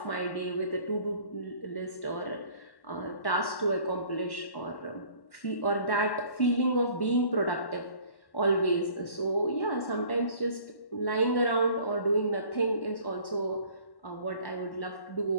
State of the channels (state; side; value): late; right; 1.1 ms